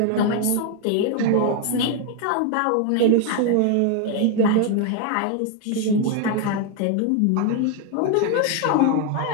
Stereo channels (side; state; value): both; different; correlation 0.01